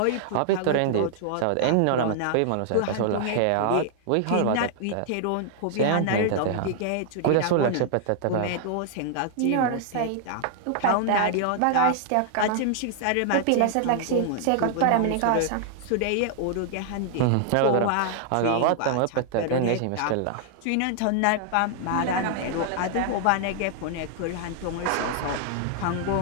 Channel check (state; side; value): different; both; correlation 0.00